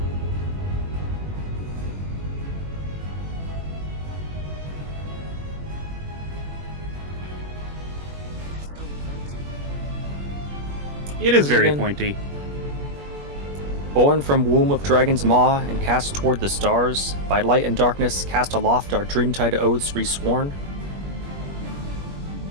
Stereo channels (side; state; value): left; late; 21 ms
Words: It is very Again. pointy. Born from womb of dragon's maw and cast toward the stars, by light and darkness cast aloft our dreamtide oaths resworn.